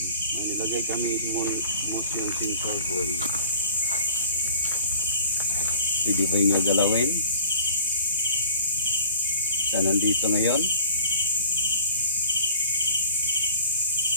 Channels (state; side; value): inverted; both; correlation -0.45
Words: Ang nilagay kami motion sensor ball. Pwede ba niyo galawin? Sa nandito ngayon?